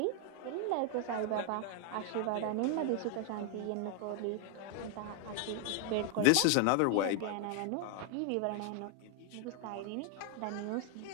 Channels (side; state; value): both; different; correlation 0.00